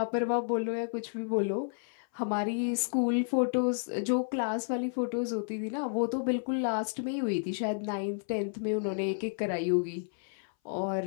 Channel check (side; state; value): right; silent; 57 dB below the other